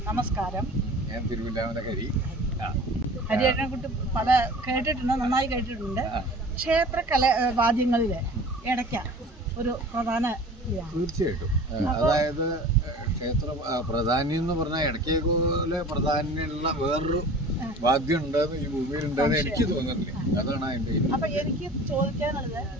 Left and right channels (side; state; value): both; normal; correlation 0.42